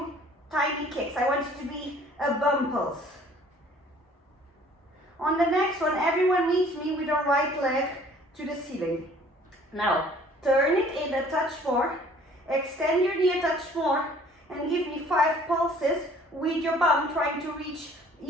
tiny kicks. I want you to be a bum pulse. On the next one, everyone meets me with the right leg to the ceiling. Now, turn it in a touch more, extend your knee a touch more, and give me 5 pulses with your bum trying to reach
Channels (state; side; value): normal; both; correlation 0.54